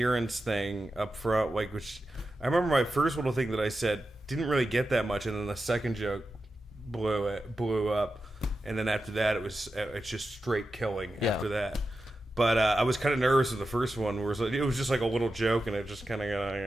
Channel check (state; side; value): normal; both; correlation 0.91